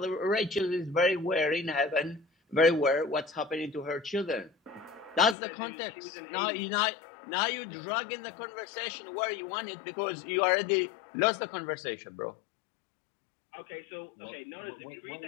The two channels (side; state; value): right; drops out; at 5.4 s